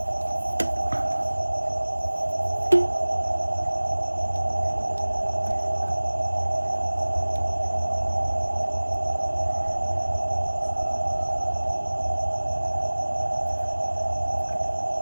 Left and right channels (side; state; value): both; inverted; correlation -1.00